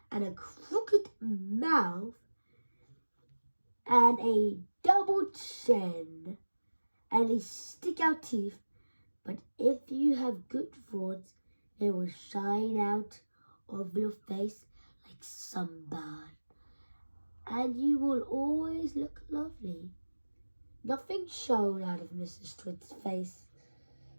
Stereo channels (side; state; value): both; inverted; correlation -1.00